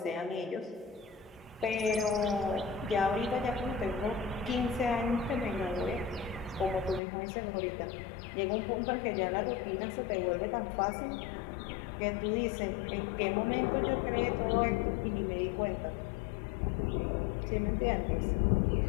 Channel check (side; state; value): right; drops out; at 7.0 s